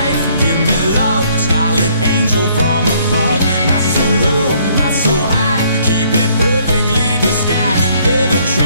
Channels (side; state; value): both; inverted; correlation -0.64